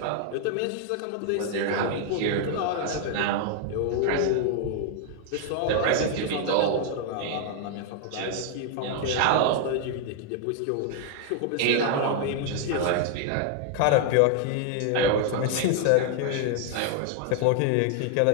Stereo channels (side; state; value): both; different; correlation 0.00